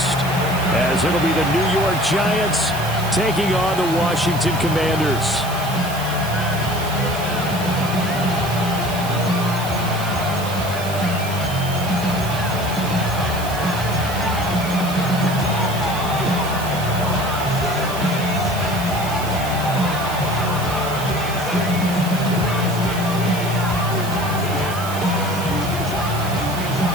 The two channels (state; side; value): noise; right; hiss, 12 dB below the sound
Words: as it'll be the New York Giants taking on the Washington Commanders.